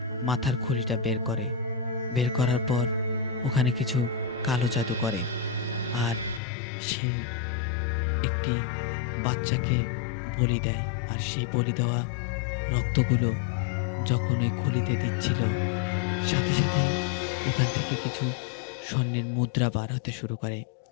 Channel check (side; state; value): right; drops out; at 6.4 s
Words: মাথার খুলিটা বের করে। বের করার পর ওখানে কিছু কালো জাদু করে। আর সে একটি বাচ্চাকে বলি দেয়। আর সেই বলি দেওয়া রক্তগুলো যখন ওই খুলিতে দিচ্ছিল, সাথে সাথেই ওখান থেকে কিছু স্বর্ণের মুদ্রা বার হতে শুরু করে।